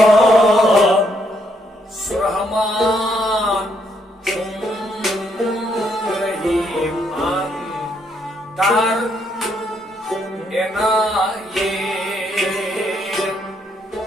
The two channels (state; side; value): normal; both; correlation 0.73